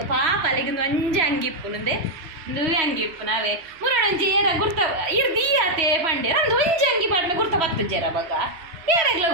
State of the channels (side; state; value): left; late; 3.1 ms